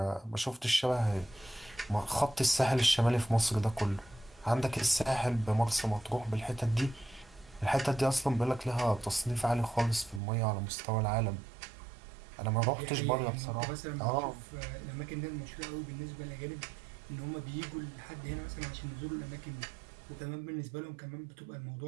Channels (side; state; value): left; drops out; at 10.2 s